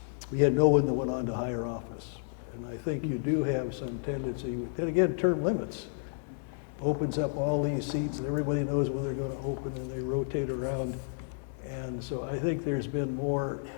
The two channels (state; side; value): silent; right; digital silence